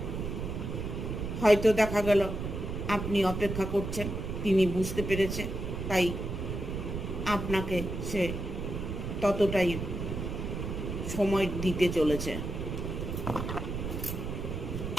হয়তো দেখা গেল আপনি অপেক্ষা করছেন, তিনি বুঝতে পেরেছে, তাই আপনাকে সে ততটাই সময় দিতে চলেছে।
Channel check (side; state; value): right; noise; rumble, 4 dB below the sound